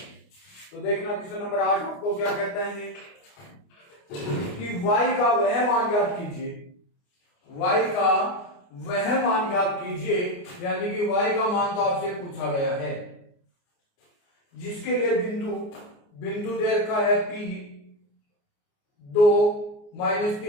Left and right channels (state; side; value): late; right; 29 ms